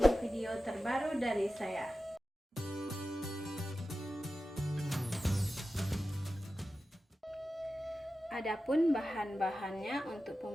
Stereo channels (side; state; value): both; normal; correlation 0.93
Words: video terbaru dari saya. Adapun bahan-bahannya untuk